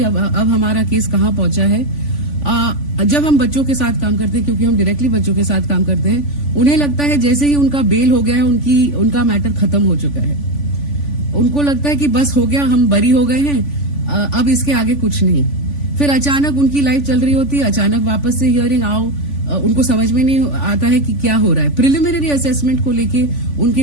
अब हमारा केस कहाँ पहुंचा है. जब हम बच्चों के साथ काम करते हैं, क्योंकि हम डायरेक्टली बच्चों के साथ काम करते हैं, उन्हें लगता है जैसे ही उनका बेल हो गया है उनका मैटर खत्म हो चुका है. उनको लगता है कि बस हो गया, हम बरी हो गए हैं, अब इसके आगे कुछ नहीं. फिर अचानक उनकी लाइफ चल रही होती है, अचानक वापस से हियरिंग आओ, उनको समझ में नहीं आता है कि क्या हो रहा है. प्रिलिमिनरी असेसमेंट को लेके उनके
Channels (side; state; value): right; late; 3.5 ms